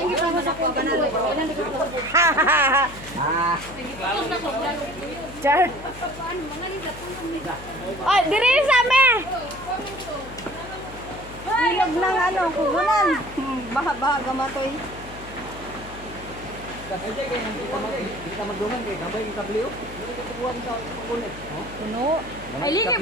Char. Ay, diri sa me. Ilog ng ano, kugunan. Baha-baha gamatoy. Kasi kay kita magdungan kay gabay kita bliyo. Kukuha sa kulit. Puno. Ay, ligi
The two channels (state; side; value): noise; left; hum, 15 dB below the sound